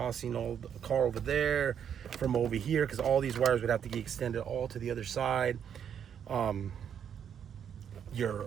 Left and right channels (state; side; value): quieter; left; 8.4 dB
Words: all the car over there from over here, because all these wires would have to get extended all to the other side. Your